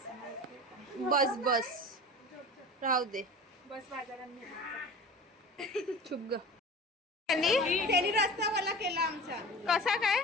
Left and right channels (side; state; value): both; normal; correlation 0.36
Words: माहिती आहे का? बस बस राहू दे. बस बाजारात नेहमीचा. चुप ग. त्यांनी रस्ता मला केला आमचा. कसा काय?